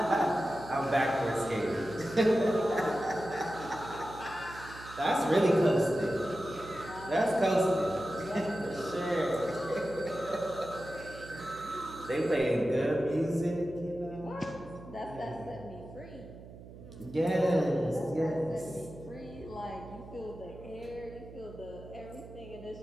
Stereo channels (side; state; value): right; noise; hum, 16 dB below the sound